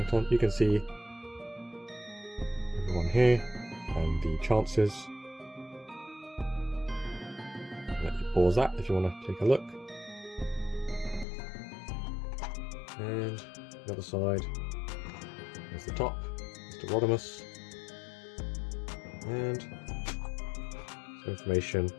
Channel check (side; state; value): right; drops out; at 11.2 s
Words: on. You can see everyone here and the chances. Let you pause that if you want to take a look. And the other side is the top, Mr. Rodimus, and some information